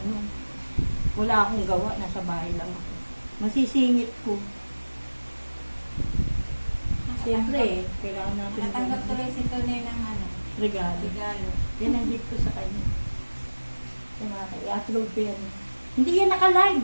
wala akong gawa, nasa bahay lang ako. Masisingit ko. Siyempre, kailangan natin Natanggap tuloy si Tonay ng ano, regalo. regalo. Yan ang gift ko sa kanya. Yung mga i-upload ko yan. Hindi yan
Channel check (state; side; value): inverted; both; correlation -1.00